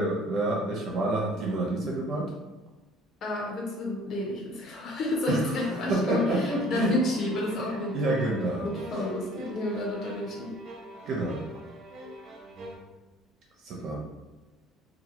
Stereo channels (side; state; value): both; normal; correlation 0.52